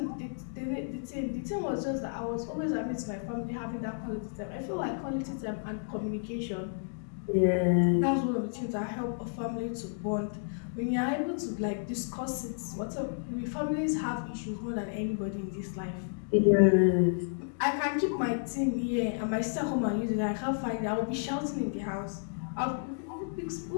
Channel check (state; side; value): silent; right; digital silence